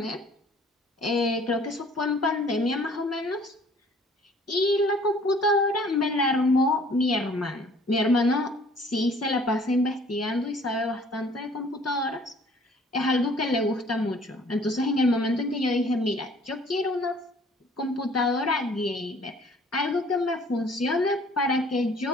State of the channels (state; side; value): normal; both; correlation 0.55